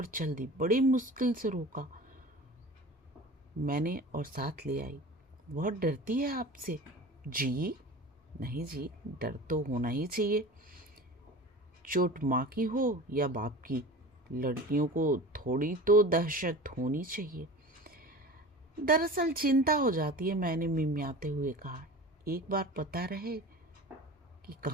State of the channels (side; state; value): both; normal; correlation 0.36